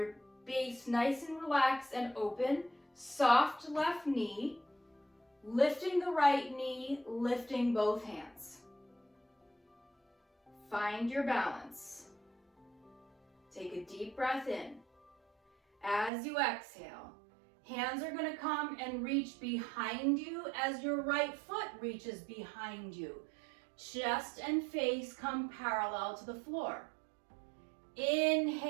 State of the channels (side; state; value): left; drops out; at 16.1 s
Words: base nice and relaxed and open. Soft left knee. Lifting the right knee, lifting both hands. Find your balance. Take a deep breath in. As you exhale, hands are going to come and reach behind you as your right foot reaches behind you. Chest and face come parallel to the floor.